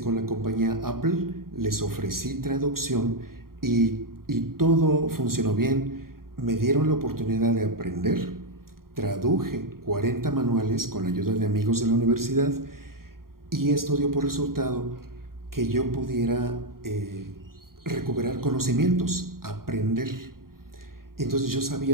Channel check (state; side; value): late; left; 0.92 ms